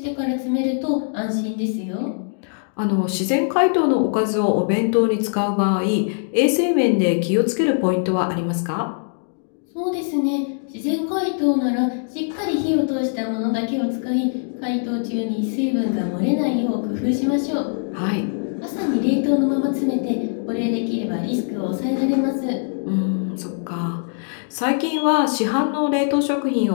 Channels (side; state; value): right; silent; digital silence